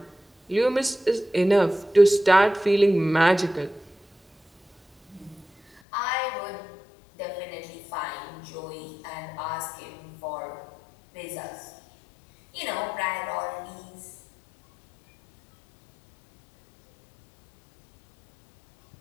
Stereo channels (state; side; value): drops out; right; at 5.8 s